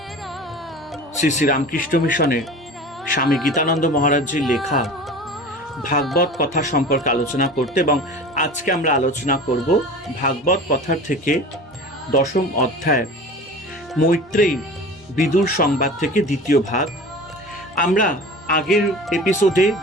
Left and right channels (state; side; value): normal; both; correlation 0.37